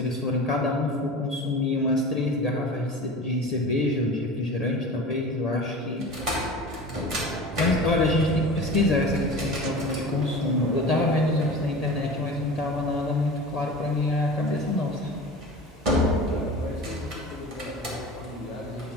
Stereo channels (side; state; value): both; normal; correlation 0.35